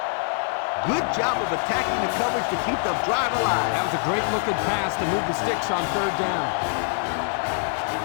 Good job of attacking the coverage to keep the drive alive. That was a great looking pass to move the sticks on third down.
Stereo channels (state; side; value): silent; right; 62 dB below the other